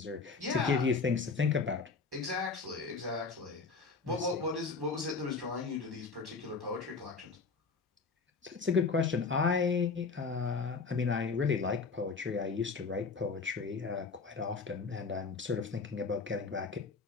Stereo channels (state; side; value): quieter; right; 4.7 dB